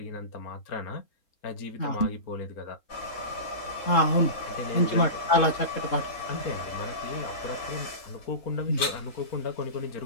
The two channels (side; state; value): right; late; 3.7 ms